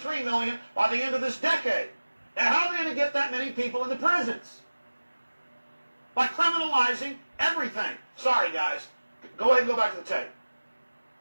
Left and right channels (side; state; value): both; inverted; correlation -1.00